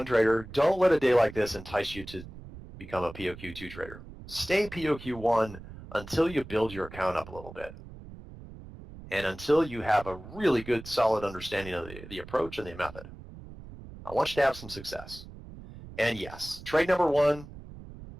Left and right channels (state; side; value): noise; right; rumble, 15 dB below the sound